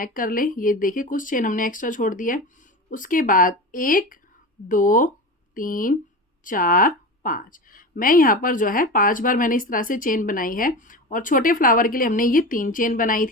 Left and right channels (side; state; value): both; normal; correlation 0.28